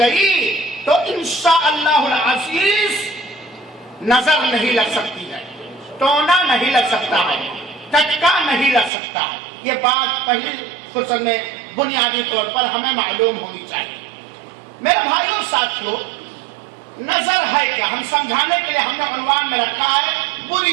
تو انشاءاللہ العزیز نظر نہیں لگ سکتی ہے، ٹونا نہیں لگ سکتا ہے، ٹچکا نہیں لگ سکتا ہے۔ یہ بات پہلی فرصت میں بنیادی طور پر ہمیں معلوم ہونی چاہیے۔ میرے بھائیوں ساتھیوں، نظر ہے کیا؟ ہم سمجھانے کے لیے ہم نے عنوان میں رکھا ہے بری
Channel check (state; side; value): drops out; left; at 8.9 s